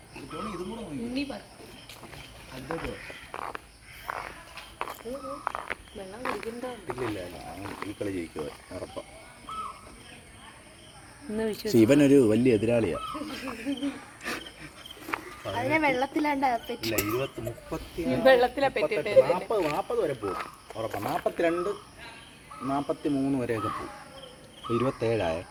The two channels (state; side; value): identical; both; correlation 1.00